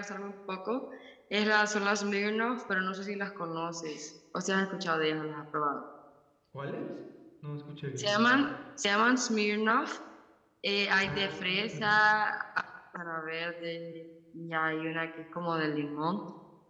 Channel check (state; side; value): identical; both; correlation 1.00